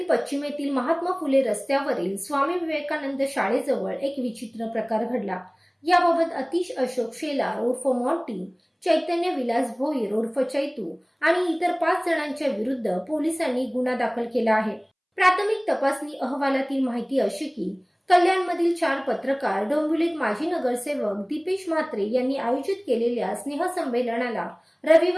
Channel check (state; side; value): identical; both; correlation 1.00